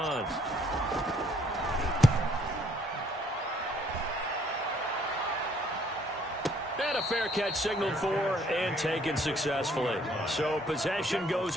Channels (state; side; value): normal; both; correlation 0.64